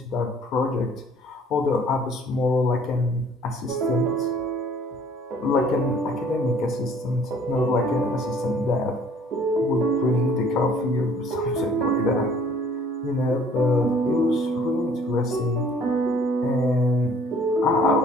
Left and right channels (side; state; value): both; normal; correlation 0.56